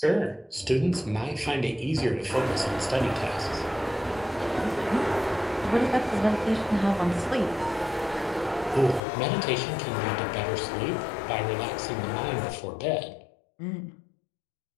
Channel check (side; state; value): right; drops out; at 9.0 s